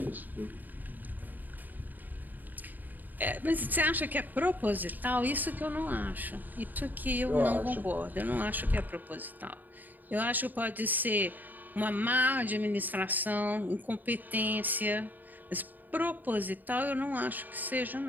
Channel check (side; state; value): left; late; 0.086 ms